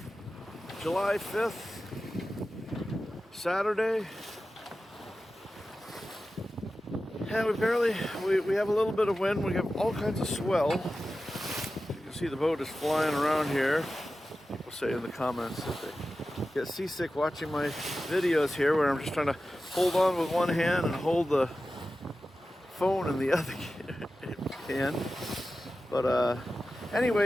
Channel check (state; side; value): normal; both; correlation 0.94